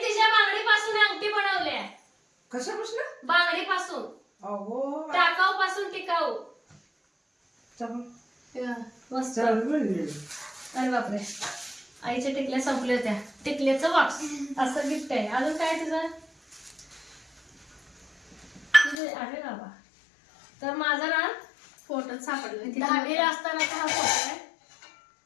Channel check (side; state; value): right; drops out; at 18.9 s